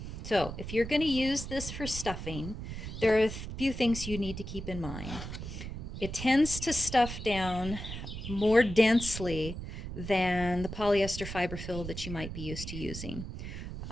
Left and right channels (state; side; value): noise; right; rumble, 8 dB below the sound